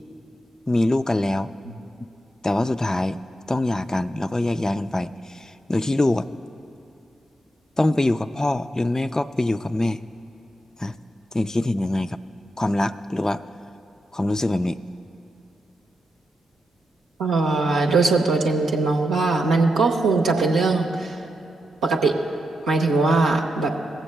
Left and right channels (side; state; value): both; normal; correlation 0.86